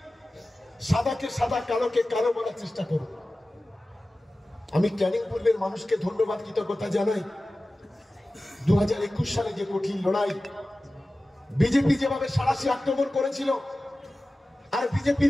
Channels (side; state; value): both; normal; correlation 0.96